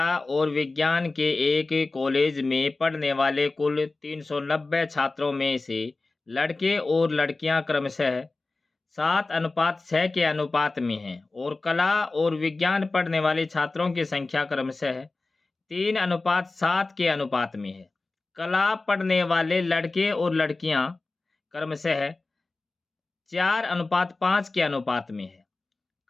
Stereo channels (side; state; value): right; quieter; 3.4 dB